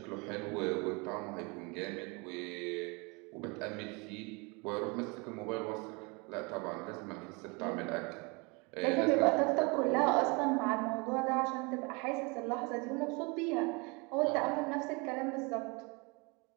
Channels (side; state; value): left; quieter; 29.2 dB